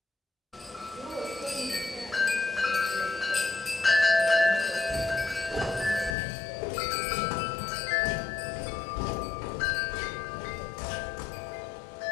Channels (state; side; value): drops out; right; at 6.2 s